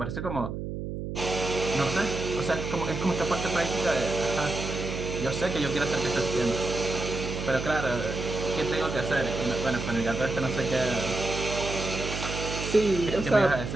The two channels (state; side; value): noise; right; hum, 5 dB below the sound